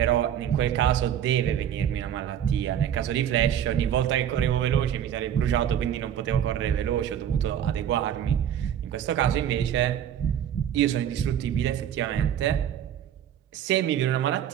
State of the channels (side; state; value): left; quieter; 9.9 dB